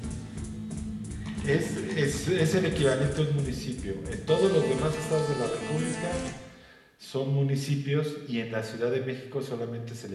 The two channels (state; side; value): identical; both; correlation 1.00